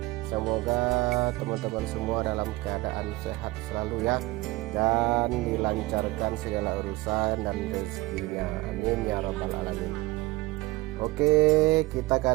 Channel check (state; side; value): quieter; left; 20.5 dB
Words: Semoga teman-teman semua dalam keadaan sehat selalu ya, dan dilancarkan segala urusan dan rezekinya, amin ya rabbal alamin. Oke, kita